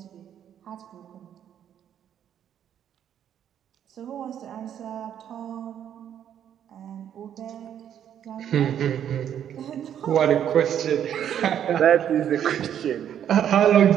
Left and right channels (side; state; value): left; quieter; 9.7 dB